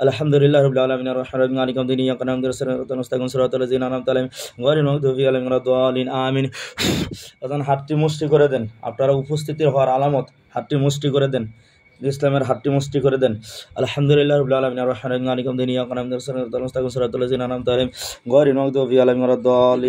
আলহামদুলিল্লাহ রাব্বিল আলামিন আর রাহমানির রহিম মালিকি ইয়াউমিদ্দিন ইয়্যাকা না'বুদু ওয়া ইয়্যাকা নাস্তাঈন সিরাতাল লাযিনা আন'আমতা আলাইহিম গায়রিল মাগদুবি আলাইহিম ওয়ালাদ-দাল্লিন আমিন। বাজান হাতটি মুষ্টি করে দেন, আপনারা উপস্থিতি হওয়ার আলামত, হাতটি মুষ্টি করে দেন, ইসলামের হাতটি মুষ্টি করে দেন। আলহামদুলিল্লাহ রাব্বিল আলামিন আর রাহমানির রহিম মালিকি ইয়াউমিদ্দিন ইয়্যাকা না'বুদু ওয়া ইয়্যাকা নাস্তাঈন সিরাতাল লাযিনা আন'আমতা আলাইহিম গায়রিল মাগদুবি আলাইহিম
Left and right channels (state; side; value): identical; both; correlation 1.00